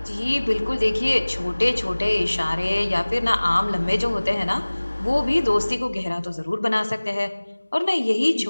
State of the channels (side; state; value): both; inverted; correlation -1.00